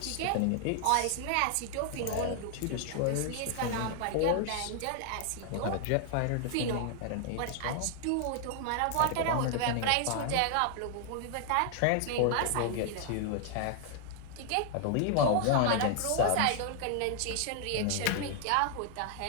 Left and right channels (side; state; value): both; different; correlation 0.00